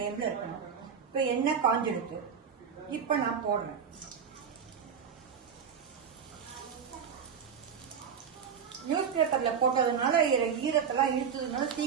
இருக்கணும். இப்ப எண்ணெய் காஞ்சிருக்கு. இப்ப நான் போடுறேன். நியூஸ் பேப்பர்ல போட்டதுனால ஈரத்தெல்லாம் இழுத்ததுனால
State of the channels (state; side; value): quieter; left; 7.1 dB